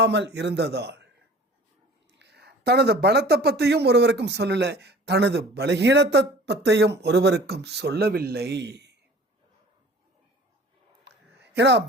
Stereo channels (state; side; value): normal; both; correlation 0.46